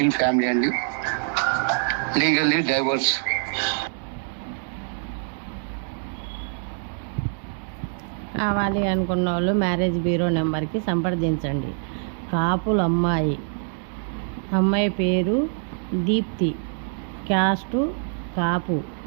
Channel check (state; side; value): silent; left; 62 dB below the other